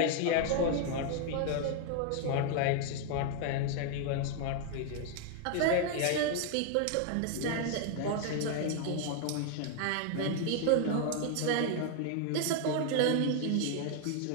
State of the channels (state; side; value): different; both; correlation 0.00